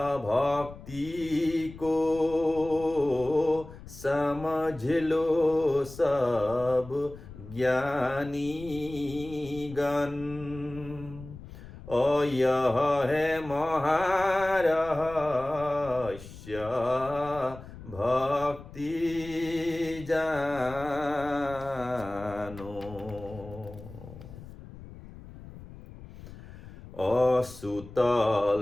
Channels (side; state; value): left; noise; rumble, 16 dB below the sound